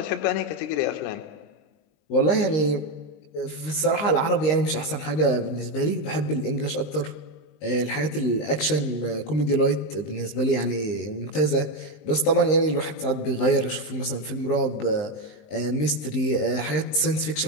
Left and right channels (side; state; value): right; late; 19 ms